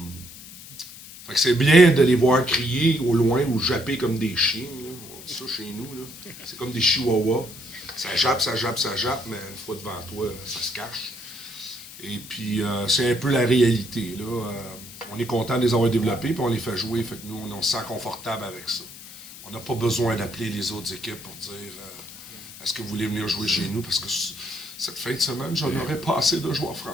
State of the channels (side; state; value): left; noise; hiss, 16 dB below the sound